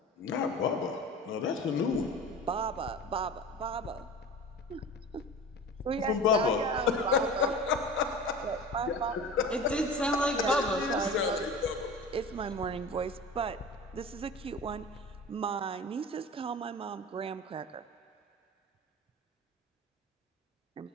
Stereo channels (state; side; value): normal; both; correlation 0.35